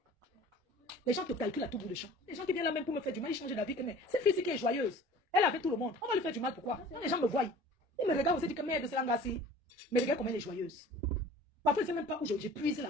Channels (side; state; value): both; normal; correlation 0.45